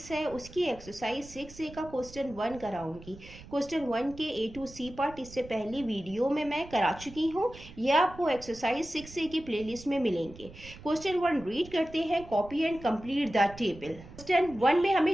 है उसकी एक्सरसाइज 6A का क्वेश्चन 1 कराऊंगी। क्वेश्चन 1 के A to C पार्ट इससे पहली वीडियो में मैं करा चुकी हूँ। ये आपको एक्सरसाइज 6A की प्लेलिस्ट में मिलेंगे। क्वेश्चन 1 रीड करते हैं। Copy and complete the table. Question 1 में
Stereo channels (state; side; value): noise; right; rumble, 18 dB below the sound